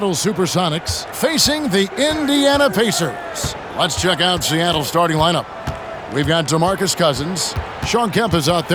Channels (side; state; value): both; identical; correlation 1.00